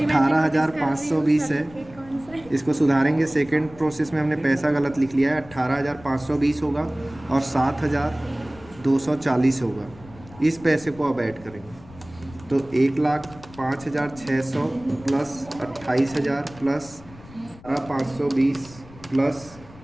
है, इसको सुधारेंगे। सेकंड प्रोसेस में हमने पैसा गलत लिख लिया है, 18,520 होगा और 7,240 होगा। इस पैसे को अब ऐड करेंगे तो 1,05,600 प्लस 28,000 प्लस 520 प्लस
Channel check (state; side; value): noise; left; rumble, 20 dB below the sound